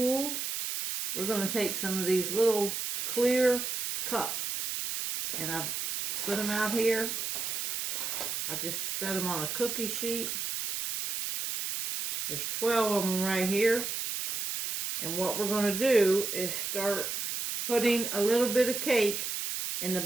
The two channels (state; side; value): noise; right; hiss, 3 dB below the sound